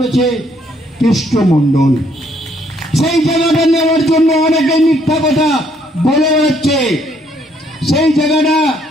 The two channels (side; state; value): both; normal; correlation 0.68